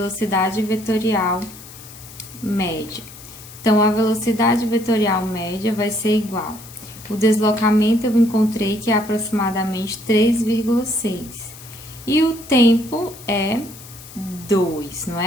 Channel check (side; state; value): left; noise; hiss, 17 dB below the sound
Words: vetorial média. Então, a velocidade vetorial média vai ser igual. O deslocamento eu encontrei que é aproximadamente 3,6. E o tempo é 2, não